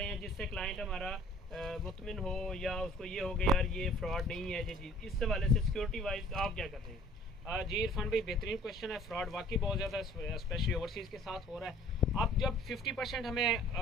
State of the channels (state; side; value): normal; both; correlation 0.53